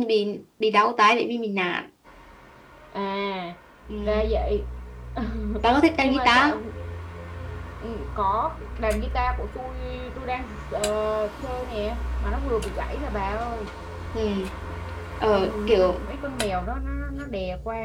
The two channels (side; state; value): both; identical; correlation 1.00